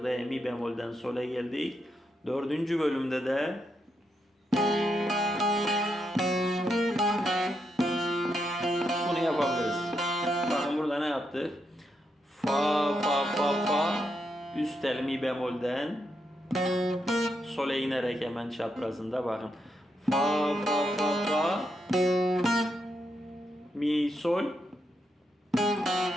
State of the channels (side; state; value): both; normal; correlation 0.82